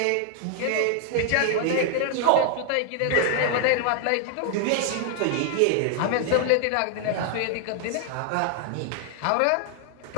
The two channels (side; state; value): both; different; correlation 0.00